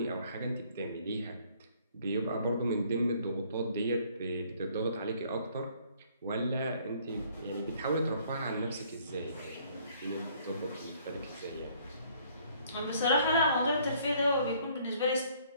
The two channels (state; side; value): inverted; both; correlation -0.61